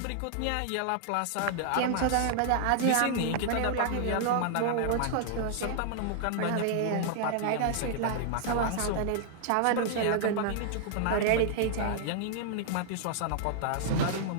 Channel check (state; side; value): different; both; correlation -0.01